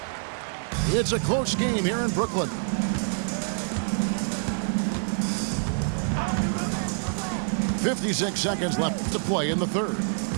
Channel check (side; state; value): left; silent; digital silence